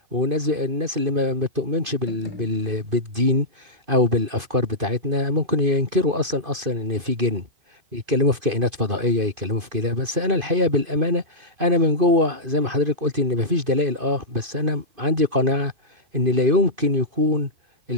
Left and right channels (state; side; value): late; left; 2.5 ms